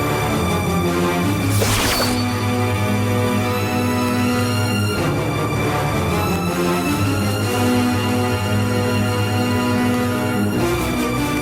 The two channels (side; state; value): both; identical; correlation 1.00